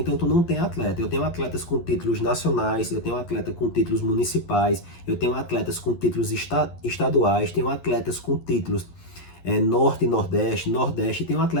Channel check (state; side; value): late; right; 11 ms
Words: tu não tem atleta. Eu tenho atletas com títulos nacionais, eu tenho atleta com títulos municipais, eu tenho atletas com títulos estaduais, tenho atletas com títulos Norte, Nordeste, Nordeste, e tenho